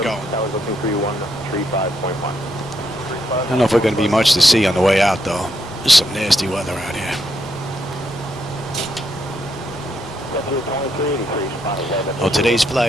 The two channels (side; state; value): both; normal; correlation 0.78